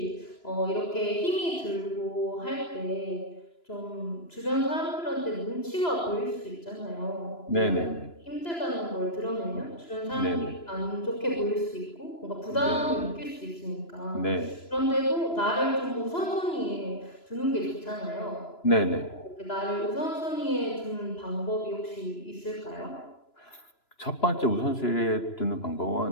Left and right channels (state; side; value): late; right; 2.9 ms